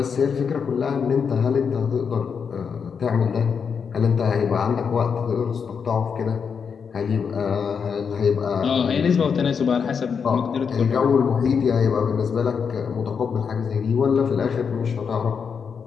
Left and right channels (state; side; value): quieter; right; 6.4 dB